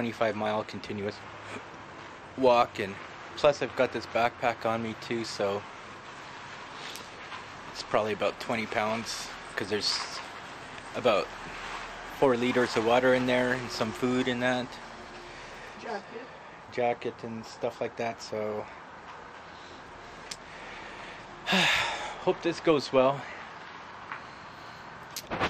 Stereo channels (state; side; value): identical; both; correlation 1.00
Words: continuous walk, and plus I've got this backpack on me too, so it's probably about 20 pounds because there's about 4 liters of water in there and some food in that jacket and stuff like that. So hope this goes well.